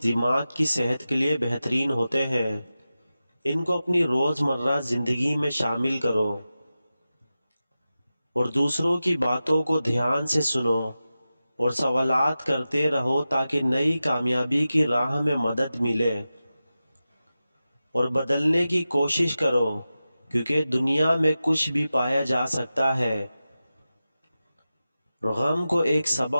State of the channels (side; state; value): both; inverted; correlation -0.94